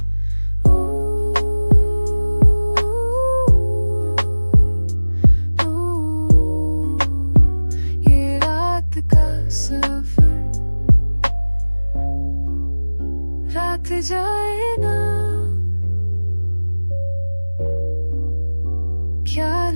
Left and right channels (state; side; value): inverted; both; correlation -1.00